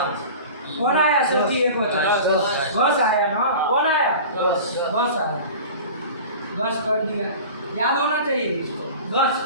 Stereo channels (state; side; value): inverted; both; correlation -0.37